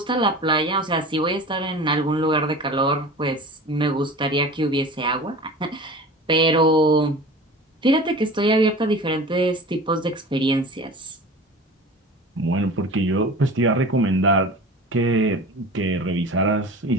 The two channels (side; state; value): both; normal; correlation 0.37